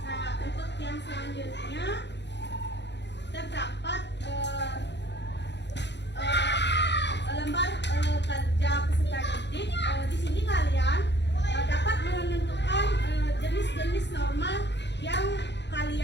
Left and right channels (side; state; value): right; late; 0.51 ms